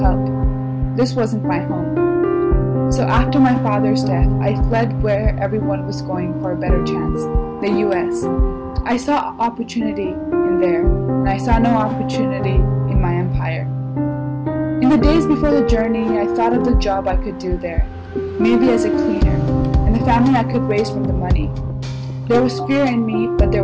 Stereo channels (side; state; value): both; identical; correlation 1.00